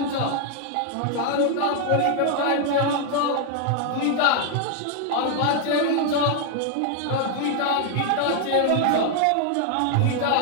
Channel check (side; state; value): both; different; correlation 0.00